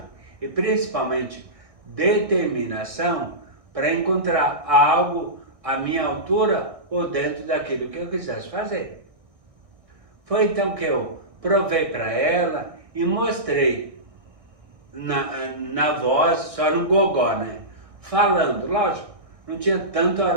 e principalmente determinação, para encontrar algo à minha altura ou dentro daquilo que eu quisesse fazer. Foi então que eu provei para ela e mostrei na voz, só no gogó, né? Falando, lógico, não tinha tanto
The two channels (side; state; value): left; late; 1.6 ms